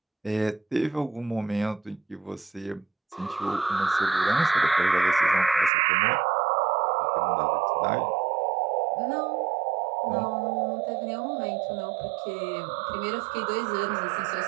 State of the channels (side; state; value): left; drops out; at 5.7 s